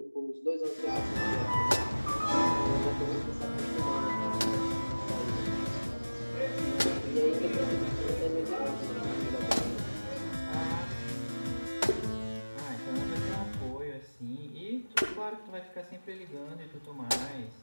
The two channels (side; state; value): both; inverted; correlation -1.00